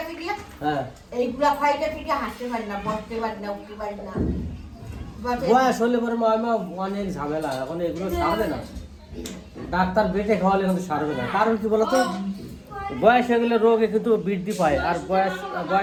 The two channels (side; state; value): both; identical; correlation 1.00